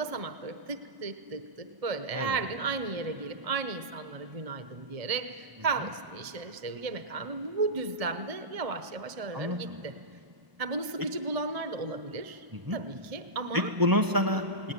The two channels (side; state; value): left; late; 1.0 ms